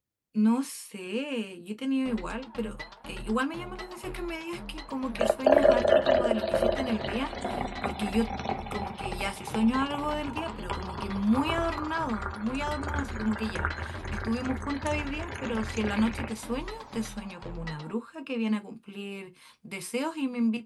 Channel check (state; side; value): identical; both; correlation 1.00